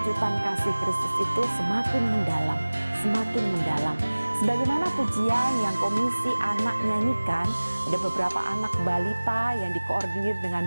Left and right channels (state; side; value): inverted; both; correlation -1.00